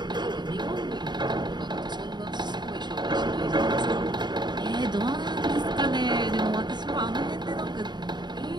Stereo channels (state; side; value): late; left; 0.21 ms